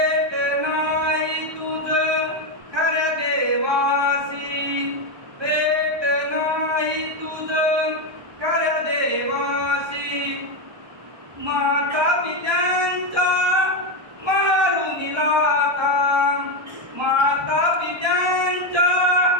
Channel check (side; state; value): left; late; 1.2 ms